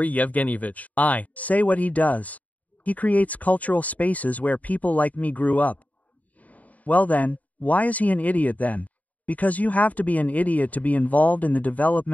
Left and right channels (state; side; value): late; right; 0.073 ms